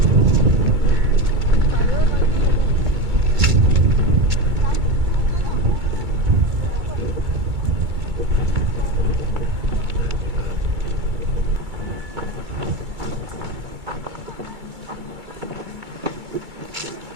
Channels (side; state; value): left; late; 2.3 ms